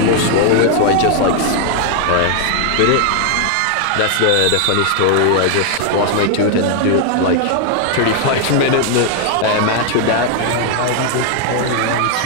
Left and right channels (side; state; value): both; different; correlation 0.00